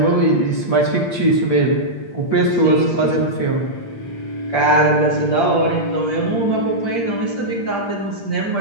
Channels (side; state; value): right; late; 8.6 ms